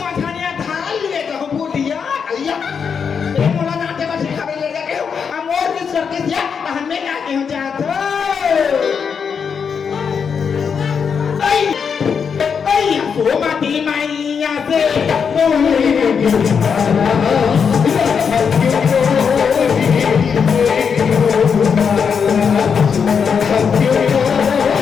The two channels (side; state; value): right; quieter; 6.5 dB